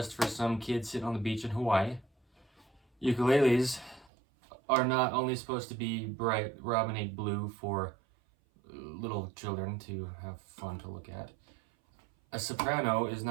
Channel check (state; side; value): drops out; left; at 4.1 s